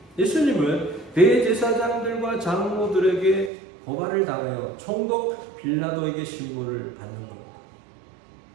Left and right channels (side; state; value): left; drops out; at 3.5 s